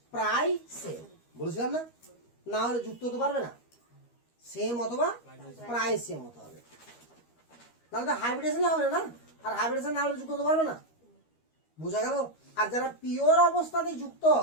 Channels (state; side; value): late; right; 13 ms